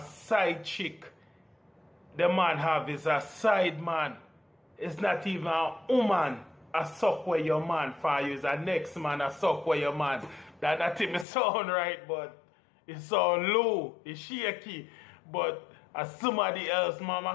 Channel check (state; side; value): drops out; right; at 11.2 s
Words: chick, the man have is a side man. It's not even a woman. A suck where your man for you is a next man a suck where your man. That not even sound right, but it sound low, it's shaky. But as somebody else,